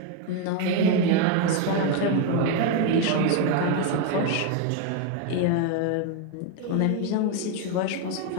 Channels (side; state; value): both; different; correlation 0.01